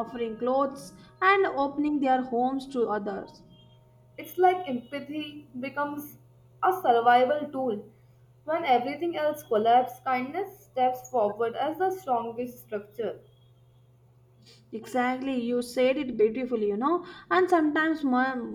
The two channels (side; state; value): both; identical; correlation 1.00